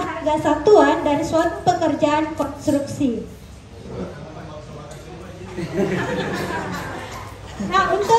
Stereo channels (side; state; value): both; identical; correlation 1.00